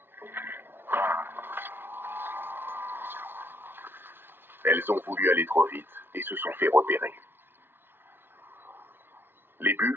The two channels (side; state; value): left; late; 0.10 ms